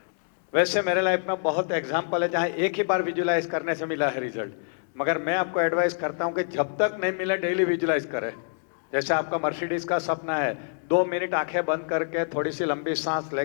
वैसे मेरे लाइफ में बहुत एग्जाम्पल है जहाँ एक ही बार विजुअलाइज करने से मिला है रिजल्ट, मगर मैं आपको एडवाइस करता हूँ कि जब तक नहीं मिला डेली विजुअलाइज करें। जैसे आपका मर्सिडीज का सपना है, 2 मिनट आंखें बंद करके थोड़ी सी लंबी सांस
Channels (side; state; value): right; silent; digital silence